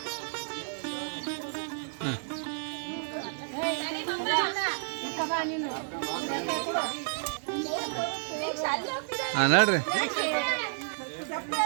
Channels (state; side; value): silent; left; 55 dB below the other